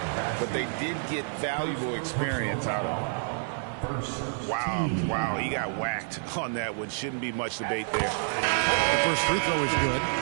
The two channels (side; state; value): left; silent; 59 dB below the other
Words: but they did get valuable experience out of it. Wow, he got whacked on that one. Shouldn't be much debate there. The first free throw is good.